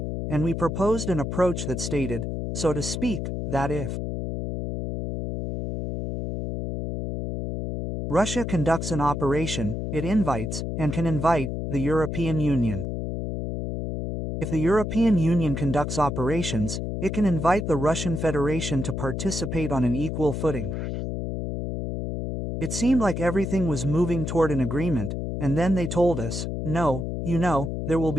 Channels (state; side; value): noise; left; hum, 3 dB below the sound